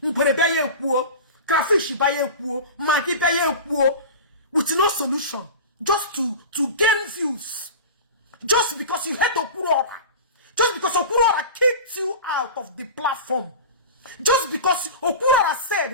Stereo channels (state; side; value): inverted; both; correlation -0.31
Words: Baye kuo. Crayfish baye kuo. Maggi baye kuo. With no solution. Just to gain views. Just because you hate Okwuluora. Just because Okwuluora kicked you out of the platform. Just because Okwuluora